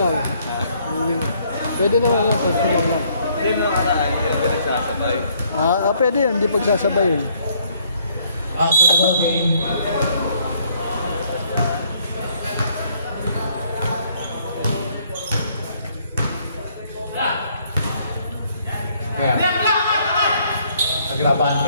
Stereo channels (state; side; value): inverted; both; correlation -0.66